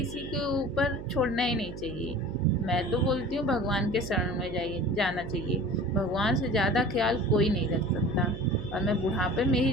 के ऊपर छोड़ना ही नहीं चाहिए। मैं तो बोलती हूँ भगवान के शरण में जाना चाहिए। भगवान से ज़्यादा ख्याल कोई नहीं रख सकता। और मैं बुढ़ापे में ही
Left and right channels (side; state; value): right; noise; hum, 10 dB below the sound